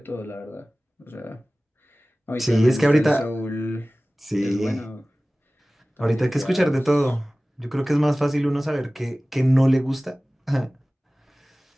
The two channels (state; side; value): normal; both; correlation 0.98